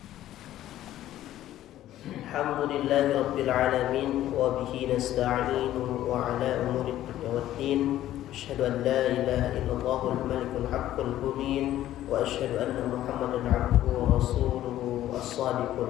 Alhamdulillahi rabbil alamin wa bihi nasta'inu wa ala umuri dunya waddin. Asyhadu an la ilaha illallahul malikul haqqul mubin wa asyhadu anna Muhammadan abduhu wa rasuluhu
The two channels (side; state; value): right; quieter; 13.3 dB